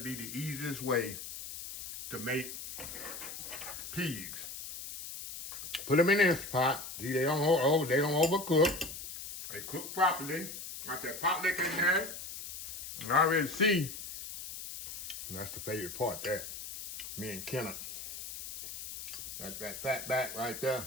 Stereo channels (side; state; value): left; noise; hiss, 9 dB below the sound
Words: the easiest way to make peas. Put them in this pot. See, they don't overcook. They cook properly. Got that pot liquor in there. And I already see. And that's the favorite part there. Me and Kenneth. That's that fat back right there.